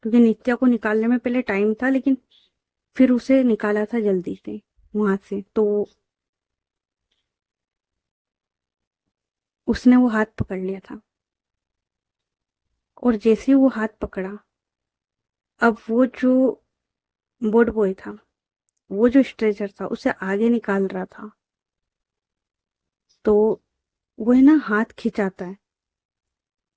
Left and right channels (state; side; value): identical; both; correlation 1.00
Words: नित्या को निकालने में पहले टाइम था, लेकिन फिर उसे निकाला था जल्दी से वहां से। तो उसने वो हाथ पकड़ लिया था। और जैसे ही वो हाथ पकड़ा, अब वो जो बोर्ड बॉय था, वो जो स्ट्रेचर था उसे आगे निकाल रहा था। तो वो है ना हाथ खिंचाता है,